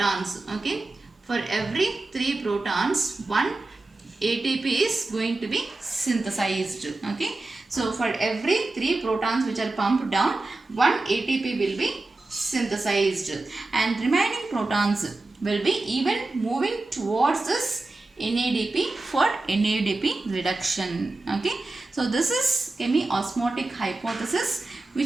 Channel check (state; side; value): quieter; left; 3.1 dB